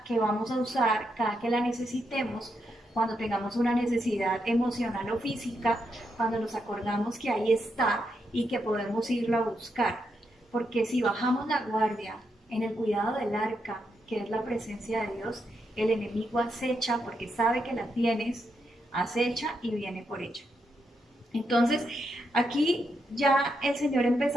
que vamos a usar cada que la necesitemos, cuando tengamos una necesidad emocional o física, cuando nos acordamos que ahí está y que podemos irlo a buscar. Porque si bajamos la guardia en el cuidado del arca, que es la presencia de Dios, el enemigo acecha porque sabe que la tienes, acecha y viene por ella. Entonces, aquí ya el Señor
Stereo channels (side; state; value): both; normal; correlation 0.82